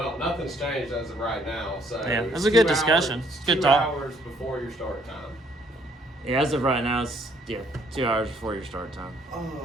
nothing's changed as of right now, so. Yeah, it's that's a good 2 discussion. hours- It's good 2 talk. hours before your start time. Yeah, as of right now, it's 2 hours before your start time. Oh,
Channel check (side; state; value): both; normal; correlation 0.65